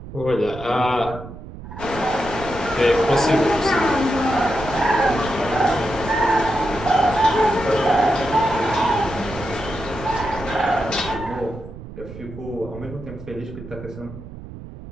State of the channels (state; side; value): noise; right; rumble, 13 dB below the sound